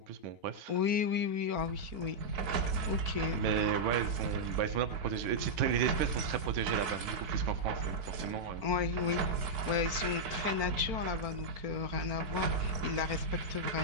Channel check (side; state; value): left; late; 4.4 ms